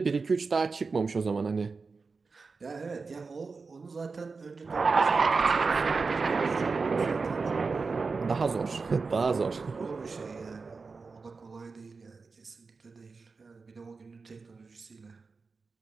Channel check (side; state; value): left; quieter; 4.4 dB